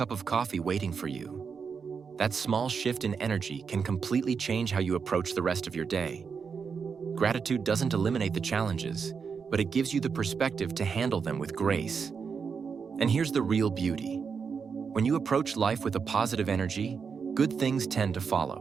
of coffee waiting for you. That small shift in energy can completely change how you approach the rest of your day. Gratitude doesn't eliminate the challenges, but it gives you the perspective to handle them with grace. And here's the real beauty. When you approach life with a positive energy, good things tend to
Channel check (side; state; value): left; quieter; 5.9 dB